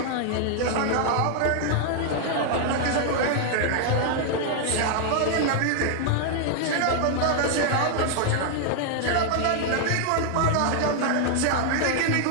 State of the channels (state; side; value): different; both; correlation 0.00